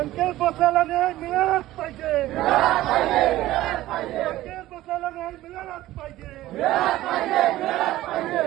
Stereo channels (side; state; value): left; quieter; 15.7 dB